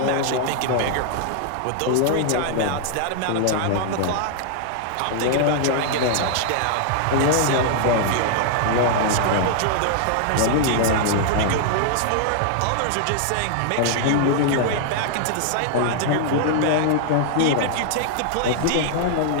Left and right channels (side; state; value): both; different; correlation -0.01